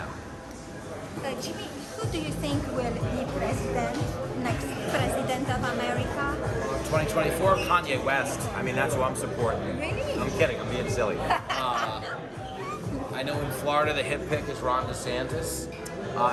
Jimmy, who do you think will be next president of America? 2024, Kanye West. I mean, that's who I'm supporting. Really? I'm kidding, I'm being silly. I know in Florida the hit pick is Ron DeSantis.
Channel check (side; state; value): both; identical; correlation 1.00